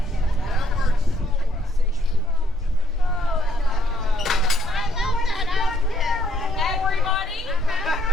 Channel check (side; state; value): both; normal; correlation 0.70